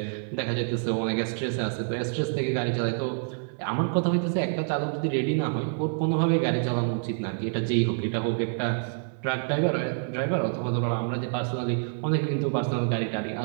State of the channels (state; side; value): silent; left; 58 dB below the other